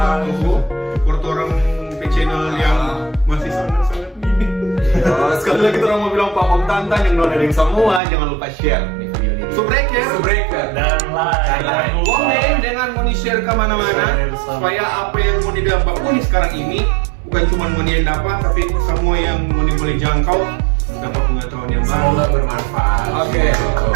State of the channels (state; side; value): drops out; left; at 8.0 s